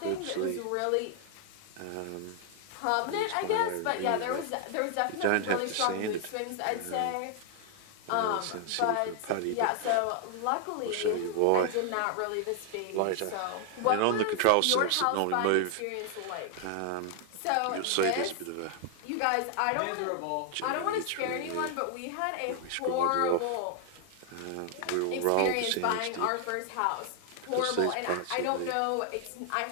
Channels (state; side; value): different; both; correlation 0.00